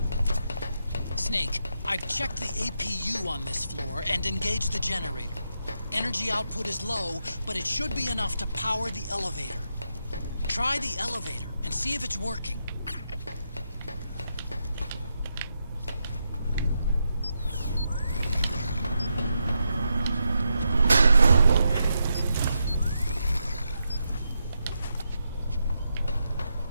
Snake, I've checked the APU on this floor and engaged the generator. Energy output is low, but it should be enough to power the elevator. Try the elevator and see if it's working.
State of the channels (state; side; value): inverted; both; correlation -0.84